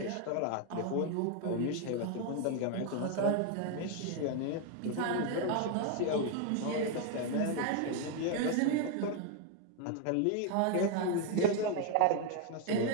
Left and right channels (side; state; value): both; different; correlation 0.01